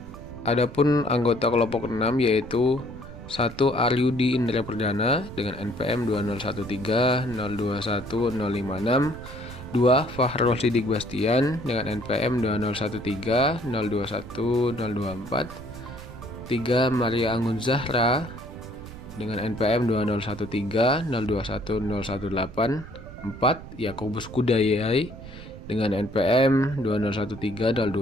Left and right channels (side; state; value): right; noise; rumble, 14 dB below the sound